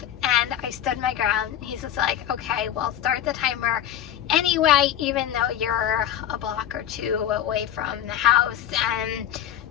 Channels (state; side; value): quieter; right; 10.8 dB